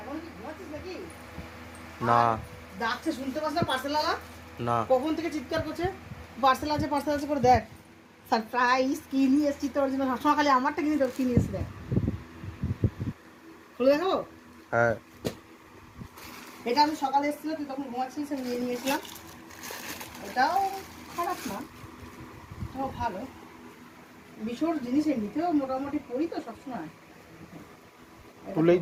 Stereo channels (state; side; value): identical; both; correlation 1.00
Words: এখন কি ঘুমাচ্ছিস নাকি? না ডাকছে শুনতে পাস না পার্সেলওয়ালা? না। কখন থেকে চিৎকার করছে পার্সেল আছে করে দেখ। সারপ্রাইজ কি নিয়ে এসছি তোর জন্য, সবসময় খালি আমারটা কিনে তোর কি নিয়ে এসছি দেখ। খুলে দেখাবো? হ্যাঁ। এটা আমি সকালে এসেছিল, তুই তখন ঘুমাচ্ছিস, আমি নিয়ে নিয়েছিলাম। এটাও খারাপ না, এটাও ভালো। বিশোর জিনিস এমনিতেও মোটামুটি পড়ি তো সবসময়। তুলেই